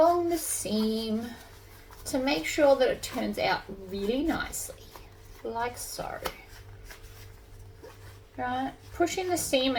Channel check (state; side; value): identical; both; correlation 1.00